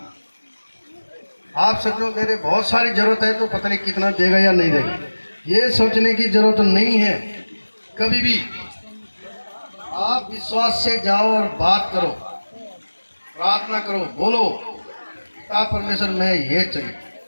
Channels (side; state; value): both; inverted; correlation -1.00